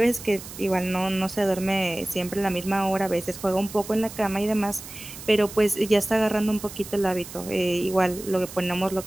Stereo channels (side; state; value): right; noise; hiss, 14 dB below the sound